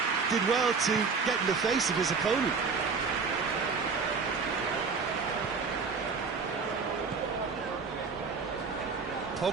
Did well to get in the face of his opponent.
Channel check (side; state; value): left; quieter; 5.0 dB